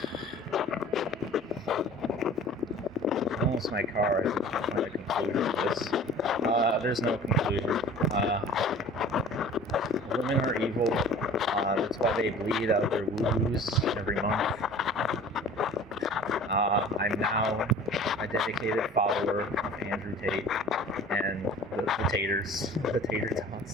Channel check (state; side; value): normal; both; correlation 0.44